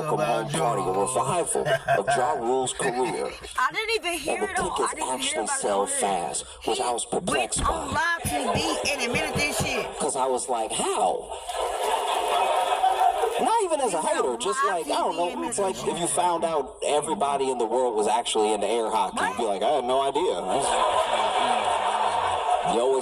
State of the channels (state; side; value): identical; both; correlation 1.00